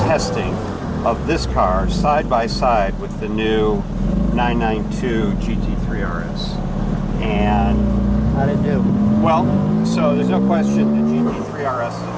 testing of this car side by side with the new 992 GT3 RS. And, How'd it do? well, so there's no question the GT3 RS is a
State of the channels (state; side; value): identical; both; correlation 1.00